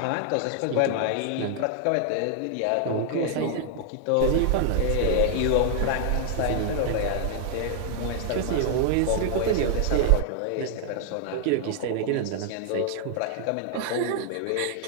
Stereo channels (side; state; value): both; different; correlation 0.00